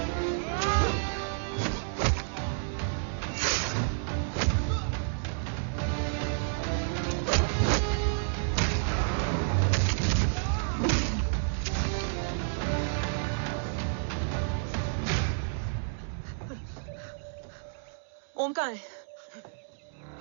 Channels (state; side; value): silent; left; digital silence